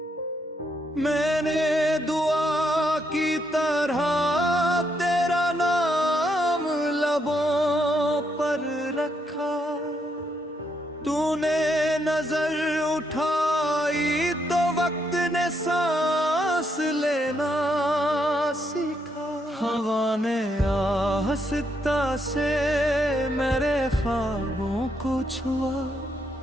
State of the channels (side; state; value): both; normal; correlation 0.77